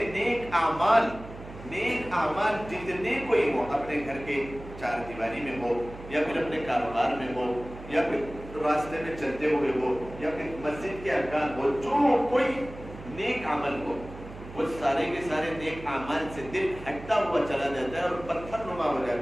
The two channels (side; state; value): right; noise; hum, 14 dB below the sound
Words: نیک اعمال جتنے کوئی ہو, اپنے گھر کے چار دیواری میں ہو, یا پھر اپنے کاروبار میں ہو, یا پھر راستے میں چلتے ہوئے ہو, یا پھر مسجد کے ارکان ہو, جو کوئی نیک عمل ہو, وہ سارے کے سارے نیک اعمال سے دل ہٹتا ہوا چلا جاتا ہے اور پتھر نما ہو